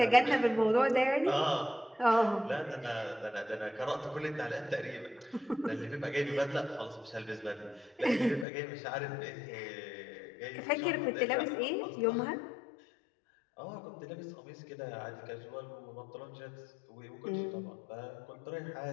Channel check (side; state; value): right; drops out; at 8.5 s